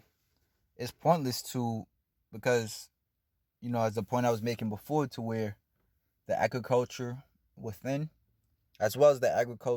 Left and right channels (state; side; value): identical; both; correlation 1.00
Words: it's pointless because, as the point I was making before, to where the agriculture within, as well as the